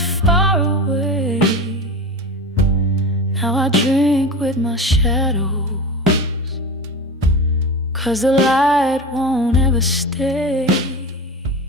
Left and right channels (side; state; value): both; normal; correlation 0.27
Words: away. Now I drink with my shadows, 'cause the light won't ever stay.